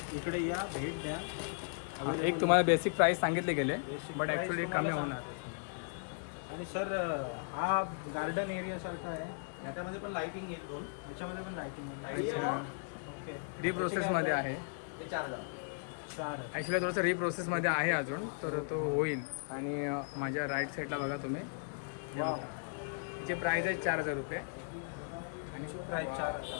इकडे या, भेट द्या. एक तुम्हाला बेसिक प्राइस सांगितले गेले, Basic बट price ॲक्च्युली कमी तुम्हाला होणार. आणि सर हा गार्डन एरिया सारखा आहे. याच्यामध्ये पण लाइटिंग येईल दोन. याच्यामध्ये पण लाईटिंग. अच्छा, ओके. रिप्रोसेसमध्ये आहे. हे 4,000. 4. ॲक्च्युली थोडंसं रिप्रोसेसमध्ये आहे अजून, तर तो होईल. आणि माझ्या राईट साईडला बघा तुम्ही, हे वाव. बघा. तिचे प्राईस आहे 4,000 रुपये. आणि प्राईस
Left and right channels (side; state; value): right; silent; digital silence